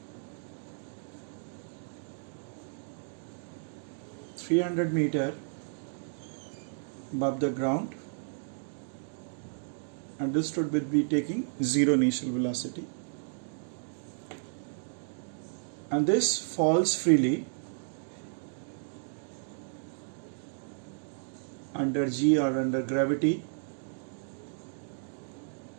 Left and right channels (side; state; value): left; silent; digital silence